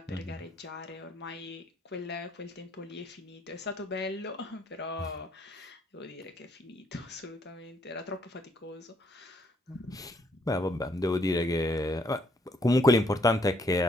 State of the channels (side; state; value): both; normal; correlation 0.69